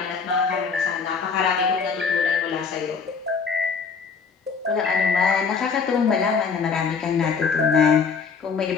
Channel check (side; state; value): right; quieter; 5.5 dB